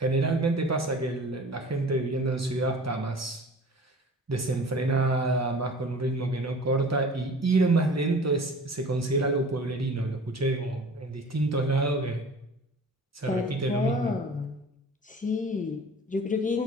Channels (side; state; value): both; normal; correlation 0.43